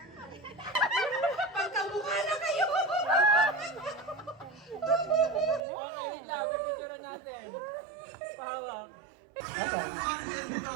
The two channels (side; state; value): left; drops out; at 5.6 s